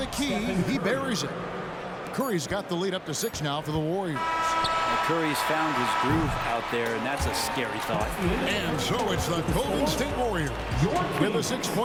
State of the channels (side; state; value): both; identical; correlation 1.00